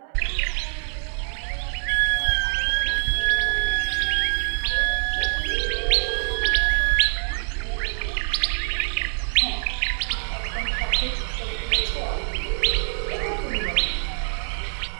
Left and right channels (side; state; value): left; silent; digital silence